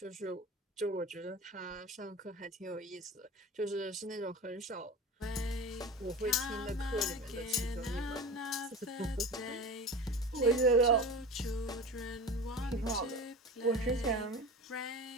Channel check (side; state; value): both; normal; correlation 0.32